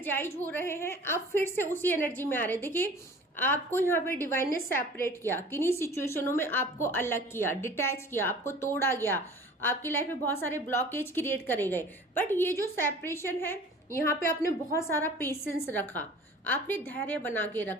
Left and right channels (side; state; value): both; normal; correlation 0.45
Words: हो रहे हैं, आप फिर से उसी एनर्जी में आ रहे हैं। देखिए आपको यहाँ पे डिवाइन ने सेपरेट किया, किन्हीं सिचुएशनों में आपको अलग किया, डिटैच किया, आपको तोड़ा गया, आपकी लाइफ में बहुत सारे ब्लॉकेज क्रिएट करे गए। बट ये जो सेपरेशन है यहाँ पे आपने बहुत सारा पेशेंस रखा, आपने धैर्य बना के